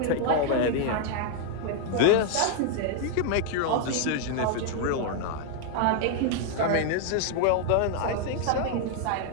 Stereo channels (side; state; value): both; different; correlation 0.00